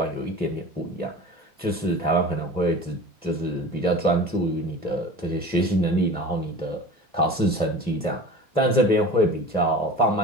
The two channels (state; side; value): normal; both; correlation 0.36